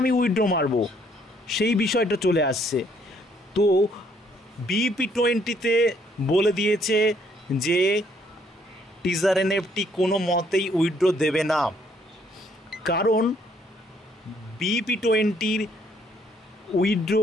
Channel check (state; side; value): normal; both; correlation 0.67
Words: উইথড্র মারবো, সেই বিষয়টা চলে আসছে। তো BP20-তে বলে দিয়েছে যে টিজার NFT কোনো মতেই উইথড্র দেবে না, কারণ BP20-র উইথড্র